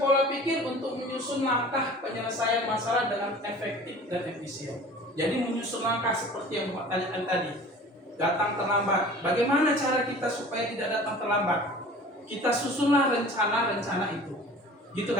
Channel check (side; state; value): both; normal; correlation 0.43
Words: pikir untuk menyusun langkah penyelesaian masalah dengan efektif dan efisien. Jadi menyusun langkah seperti yang Bapak tanyakan tadi. Datang terlambat. Bagaimana cara kita supaya tidak datang terlambat? Kita susunlah rencana-rencana itu. Gitu